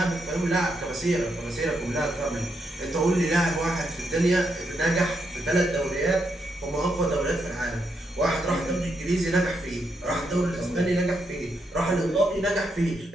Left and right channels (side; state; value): both; normal; correlation 0.80